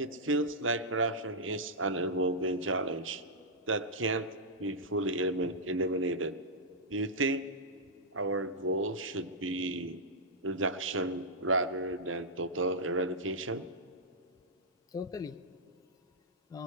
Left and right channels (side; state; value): both; normal; correlation -0.09